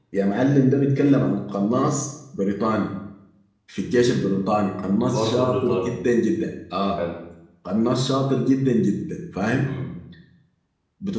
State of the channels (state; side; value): identical; both; correlation 1.00